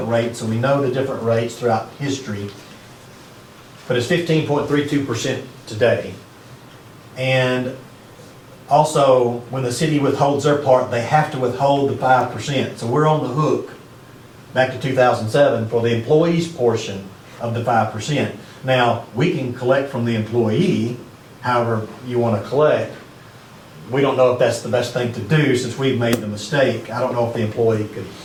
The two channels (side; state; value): both; identical; correlation 1.00